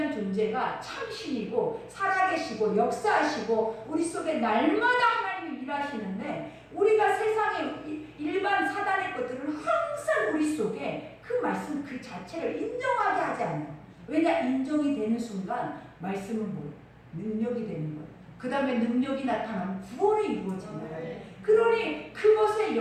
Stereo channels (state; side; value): identical; both; correlation 1.00